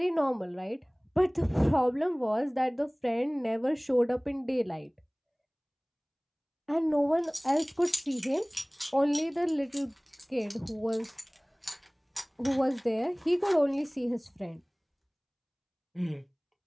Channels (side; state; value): both; identical; correlation 1.00